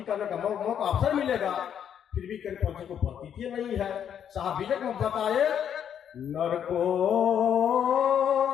करने का मौका अवसर मिलेगा। फिर भी करपंथी को प्रतीति नहीं है। साहब विजय में बताए, नर को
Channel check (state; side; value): quieter; right; 8.9 dB